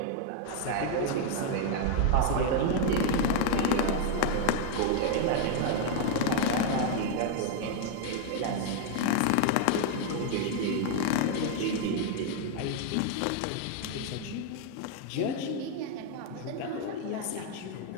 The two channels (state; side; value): different; both; correlation 0.00